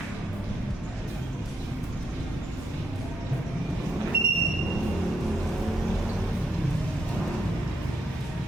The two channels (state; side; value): normal; both; correlation 0.78